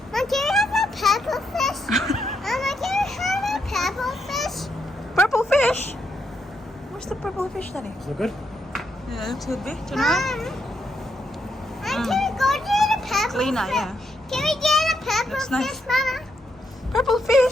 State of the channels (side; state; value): both; normal; correlation 0.79